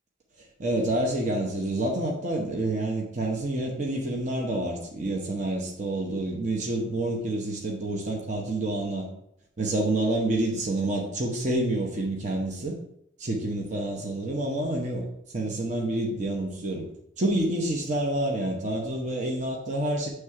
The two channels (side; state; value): both; normal; correlation 0.53